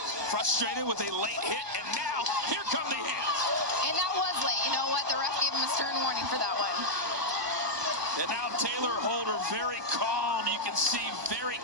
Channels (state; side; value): late; left; 1.2 ms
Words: frustrated with a late hit. And now, here come the hands. And that was late. You know what? The ref gave him a stern warning for that one. And now Taylor Holder very calm. You can see very